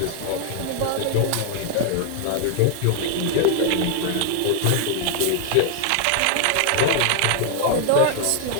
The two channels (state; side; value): different; both; correlation 0.00